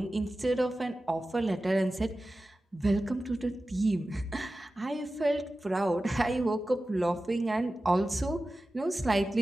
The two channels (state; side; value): normal; both; correlation 0.95